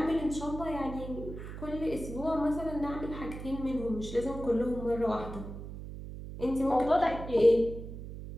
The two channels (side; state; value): right; noise; hum, 10 dB below the sound